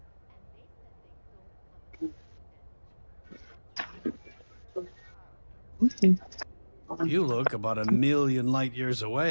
You look about 1,000,000 light years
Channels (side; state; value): both; inverted; correlation -1.00